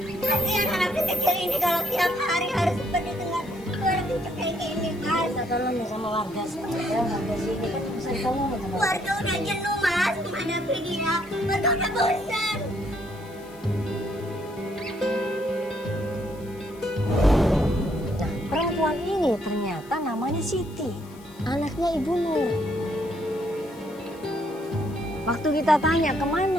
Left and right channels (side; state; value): left; noise; hiss, 24 dB below the sound